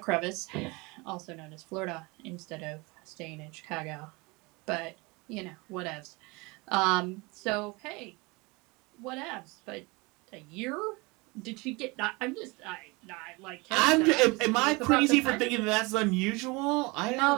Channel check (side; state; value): left; quieter; 25.8 dB